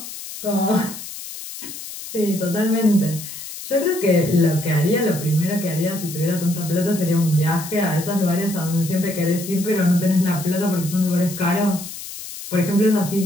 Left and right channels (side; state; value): left; noise; hiss, 11 dB below the sound